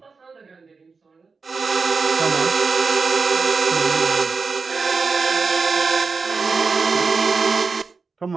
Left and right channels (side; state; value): left; quieter; 4.6 dB